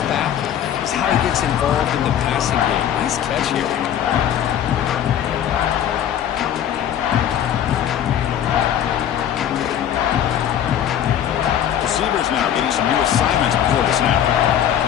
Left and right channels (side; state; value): right; quieter; 10.1 dB